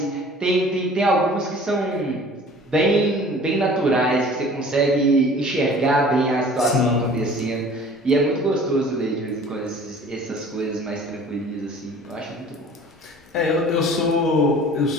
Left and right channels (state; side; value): normal; both; correlation 0.47